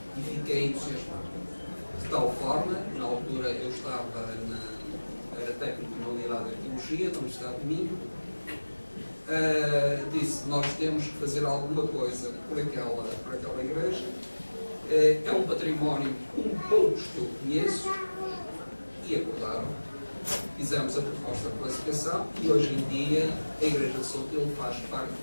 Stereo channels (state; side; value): inverted; both; correlation -1.00